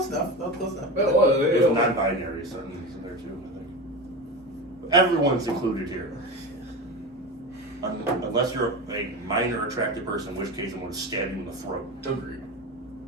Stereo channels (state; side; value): normal; both; correlation 0.25